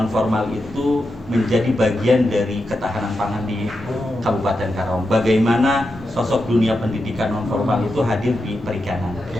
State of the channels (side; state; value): both; normal; correlation 0.88